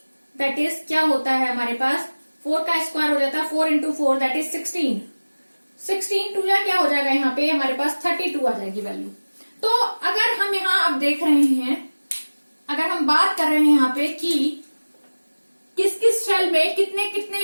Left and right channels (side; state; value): both; inverted; correlation -1.00